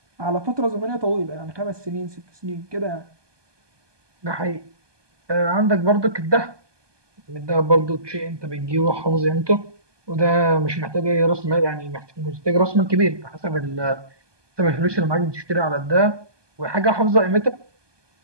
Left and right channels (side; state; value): left; late; 1.2 ms